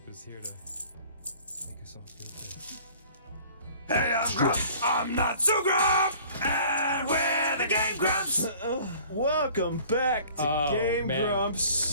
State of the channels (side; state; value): both; inverted; correlation -0.50